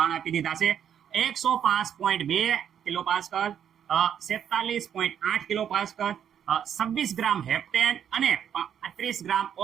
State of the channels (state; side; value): quieter; left; 8.9 dB